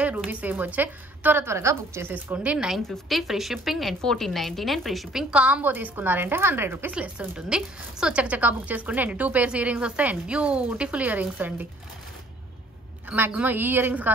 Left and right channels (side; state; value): both; normal; correlation 0.58